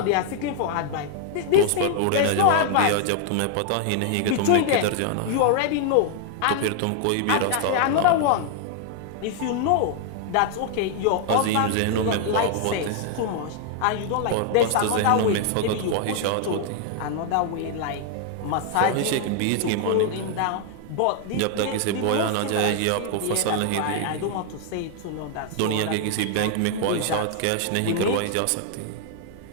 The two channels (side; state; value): both; different; correlation 0.00